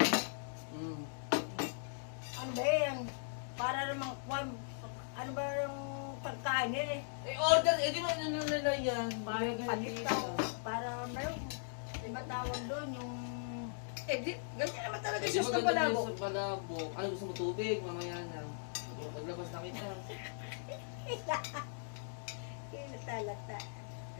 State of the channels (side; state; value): right; silent; digital silence